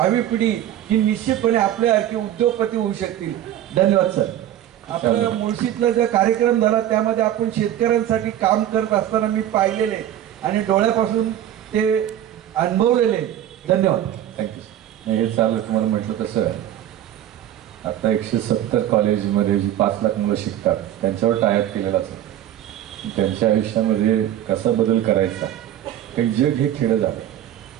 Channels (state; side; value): quieter; left; 11.7 dB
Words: पिढी ही निश्चितपणे आपल्यासारखी उद्योगपती होऊ शकतील. धन्यवाद सर. आपलं मुळशीतला जो कार्यक्रम झाला त्यामध्ये आपण शेतकऱ्यांसाठी काम करत असताना मी पाहिलेले आणि डोळ्यापासून ते अनुभवलेले. धन्यवाद. थँक्यू. हे चालू तुम्हाला म्हटलं तसं आहे, आता 170 कॉलेजमध्ये जी 5 लाख मुलं शिकतात त्यांच्यावर टायप केलेला असतो. त्यांच्या आयुष्यामध्ये कसा बदल करायचा, काही जग हे खेळं झालं.